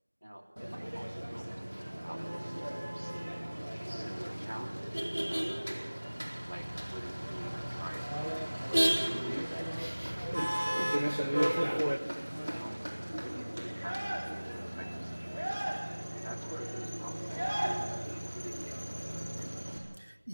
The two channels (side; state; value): both; inverted; correlation -1.00